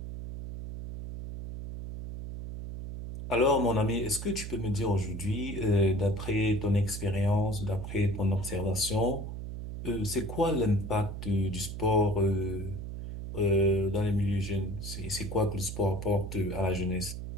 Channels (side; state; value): right; noise; hum, 7 dB below the sound